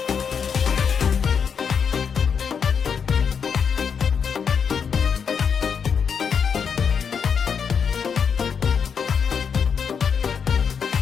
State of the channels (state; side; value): quieter; right; 6.7 dB